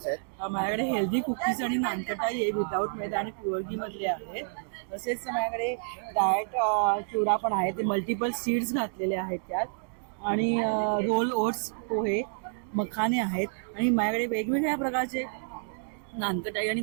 आहेत? माझ्याकडे हेल्दी कुकीज आणि नानकटाई आहे विदाऊट मैदा आणि प्युअर घी मधले आहेत. तसेच माझ्याकडे डाएट चिवडा पण आहे. ते मल्टिपल सीड्स घातलेले आहेत त्यात. आणि रोल ओट्स पोहे मखाने आहेत. आणि माझ्याकडे वेगवेगळ्या प्रकारचे नानकटाई आणि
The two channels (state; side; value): silent; left; digital silence